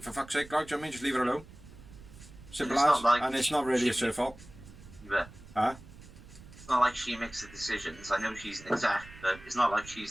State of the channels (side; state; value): right; noise; rumble, 19 dB below the sound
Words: for fuck's sake, like, do you know what I mean? Just leave her alone. Simple as. And it's not really her fault. Yeah. Huh? It's not like she makes the decisions. I know she's an exec, but it's not like